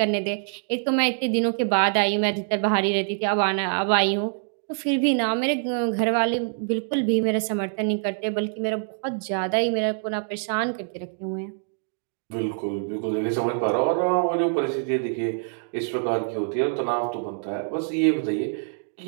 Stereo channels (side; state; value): left; silent; digital silence